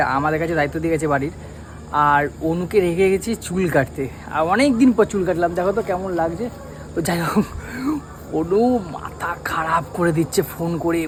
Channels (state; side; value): identical; both; correlation 1.00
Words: আমাদের কাছে দায়িত্ব দিয়ে গেছে বাড়ির। আর অনুকে রেখে গেছি চুল কাটতে। আর অনেক দিন পর চুল কাটলাম, দেখো তো কেমন লাগছে। তো যাই হোক, অনু মাথা খারাপ করে দিচ্ছে ফোন করে,